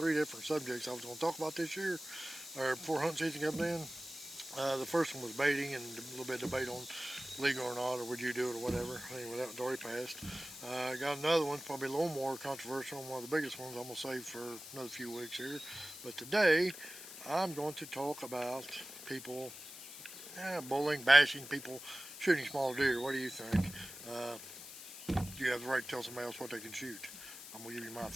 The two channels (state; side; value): noise; left; hiss, 12 dB below the sound